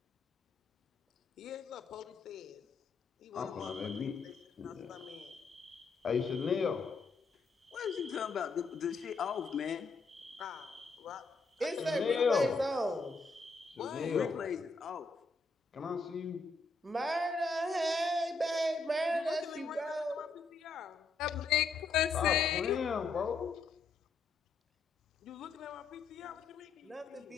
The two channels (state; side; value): quieter; right; 4.1 dB